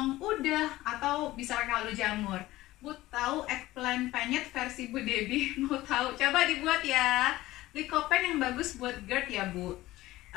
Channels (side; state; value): right; quieter; 17.1 dB